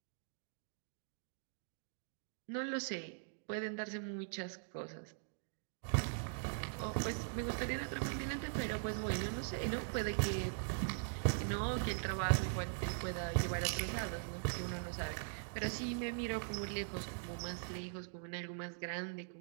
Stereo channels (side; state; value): left; silent; digital silence